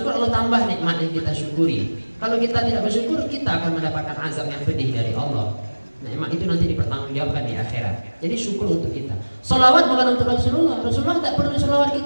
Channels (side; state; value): both; inverted; correlation -1.00